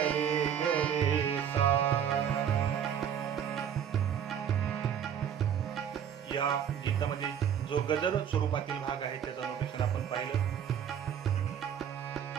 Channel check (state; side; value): quieter; left; 8.7 dB